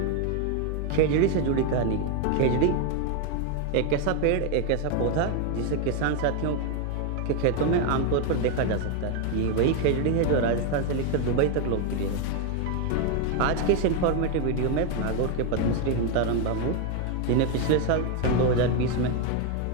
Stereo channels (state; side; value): different; both; correlation 0.01